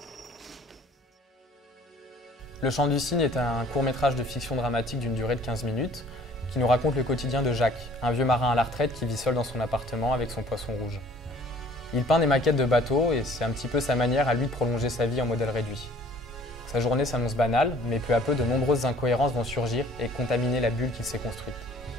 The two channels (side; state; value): both; normal; correlation 0.54